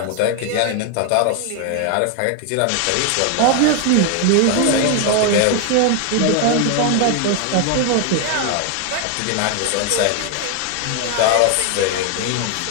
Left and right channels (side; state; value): both; different; correlation 0.00